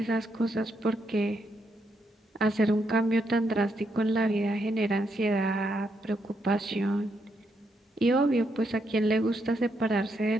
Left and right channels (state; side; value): normal; both; correlation 0.78